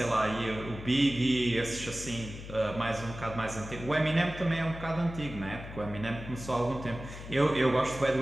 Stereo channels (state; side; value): noise; left; hum, 12 dB below the sound